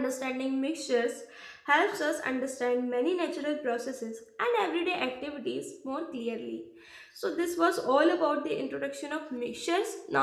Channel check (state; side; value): identical; both; correlation 1.00